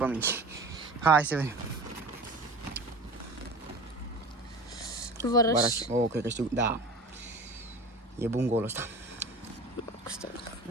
minci. Hai să vedem. Vărăș. Oh, cred că știu. Da. E bun golul ăsta.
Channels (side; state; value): both; normal; correlation 0.36